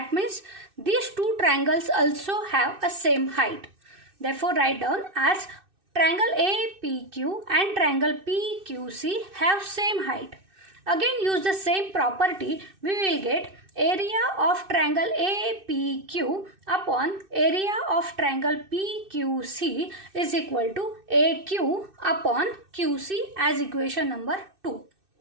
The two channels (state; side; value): late; left; 2.6 ms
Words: means these two triangles also have a same height. Therefore, write down as triangle APQ and triangle PQC have same height. Again, use the same property. We will get area of triangle APQ upon area of triangle PQC is equal to AQ upon QC as equation number 2.